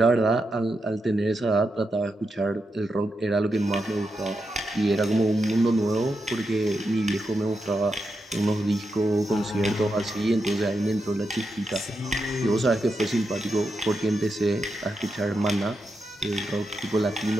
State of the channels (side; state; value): both; normal; correlation 0.86